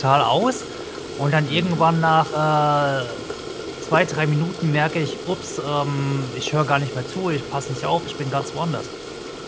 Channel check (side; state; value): both; identical; correlation 1.00